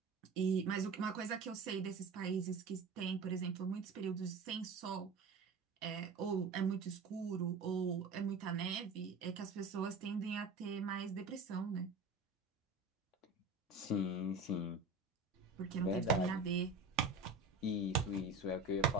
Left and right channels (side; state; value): left; quieter; 3.8 dB